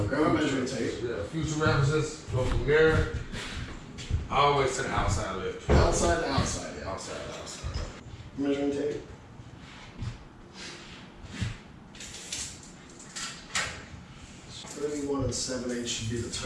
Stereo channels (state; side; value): identical; both; correlation 1.00